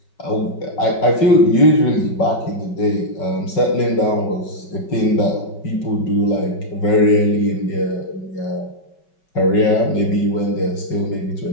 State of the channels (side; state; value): right; late; 5.4 ms